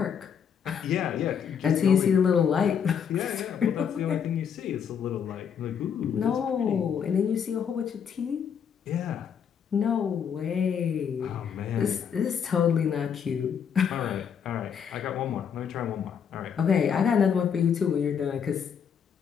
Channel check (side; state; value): right; quieter; 7.5 dB